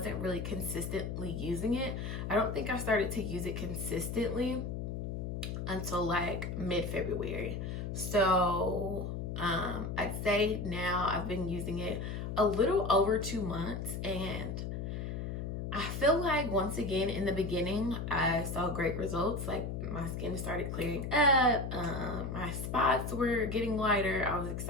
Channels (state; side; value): noise; left; hum, 4 dB below the sound